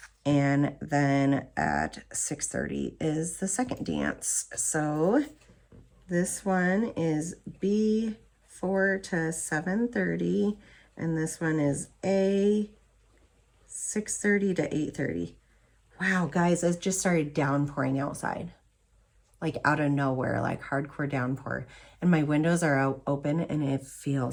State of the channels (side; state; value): both; identical; correlation 1.00